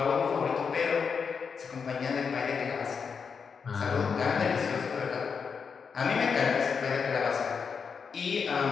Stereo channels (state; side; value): quieter; right; 5.9 dB